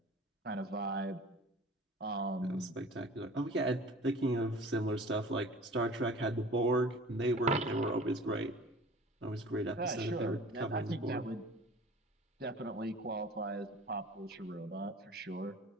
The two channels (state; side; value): normal; both; correlation 0.43